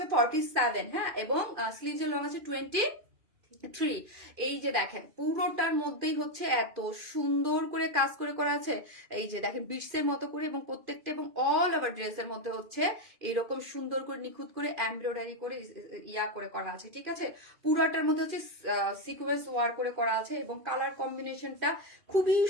47, হ্যাঁ, এবং স্লিভস এর লং আছে 20, থ্রি। এই যে দেখেন পুরোটার মধ্যেই হচ্ছে এত সুন্দর করে কাজ করে করা আছে, এই যে দেখেন বিটসের মতো করে, এবং প্রত্যেকটা এবং অল ওভার ড্রেসের মধ্যে হচ্ছে এইরকম সুন্দর করে নিখুঁত করে এমব্রয়ডারি করে ইয়া করে করা আছে, ঠিক আছে। পুরোটার মধ্যে হচ্ছে সিকোয়েন্স ওয়ার করে করা আছে, এবং কালার কম্বিনেশনটা খুবই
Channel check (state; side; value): late; left; 2.4 ms